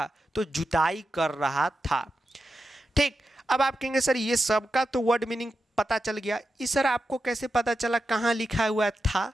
तो जुताई कर रहा था। ठीक, अब आप कहेंगे सर ये सबका तो वर्ड मीनिंग पता चल गया, इस सर आपको कैसे पता चला कहाँ लिखा हुआ था?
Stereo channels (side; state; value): both; normal; correlation 0.89